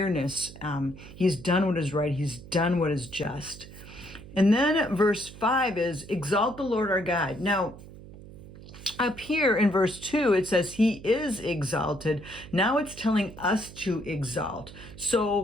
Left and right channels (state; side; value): noise; right; hum, 17 dB below the sound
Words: He's done what is right. He's done what is just. And then verse 5 is, exalt the Lord our God. Now, up here in verse 2, it says he is exalted. Now it's telling us to exalt.